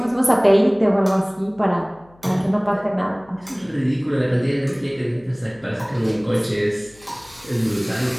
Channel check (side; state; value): left; noise; hum, 28 dB below the sound